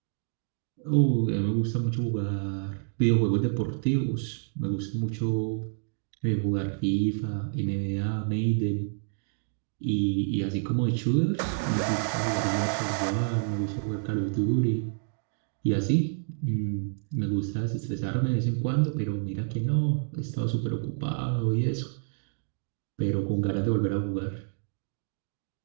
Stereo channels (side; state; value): left; silent; digital silence